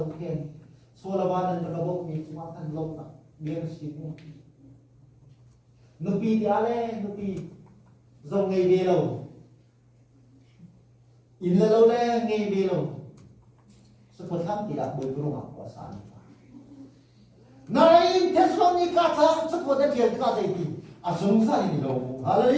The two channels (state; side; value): identical; both; correlation 1.00